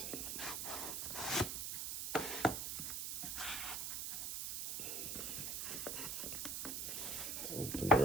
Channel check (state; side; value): noise; right; hiss, 2 dB below the sound